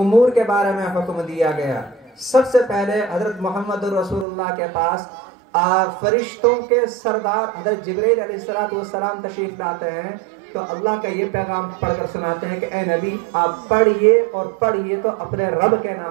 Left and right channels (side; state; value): left; drops out; at 4.2 s